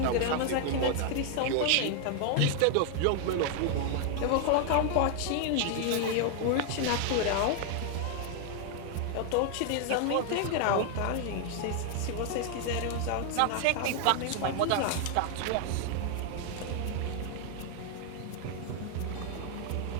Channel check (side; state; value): both; different; correlation 0.00